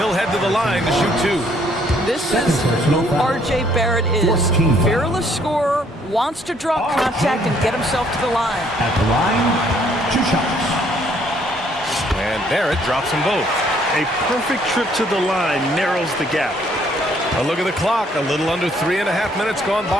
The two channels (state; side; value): normal; both; correlation 0.65